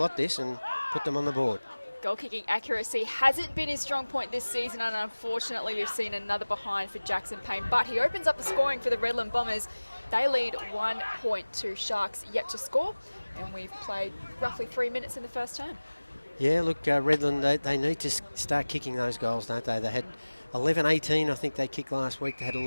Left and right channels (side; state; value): both; inverted; correlation -1.00